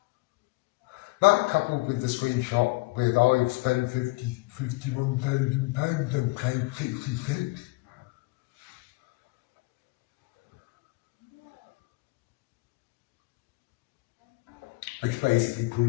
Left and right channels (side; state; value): right; quieter; 23.6 dB